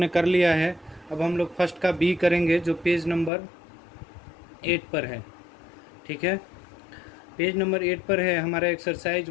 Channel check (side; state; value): right; drops out; at 3.3 s